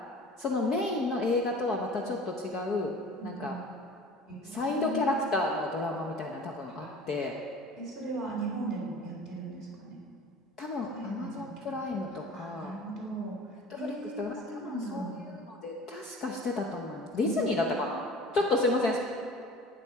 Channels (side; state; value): both; normal; correlation 0.42